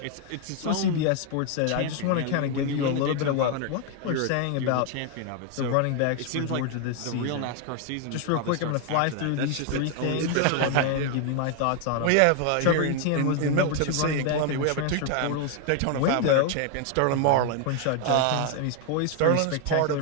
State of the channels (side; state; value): both; different; correlation 0.00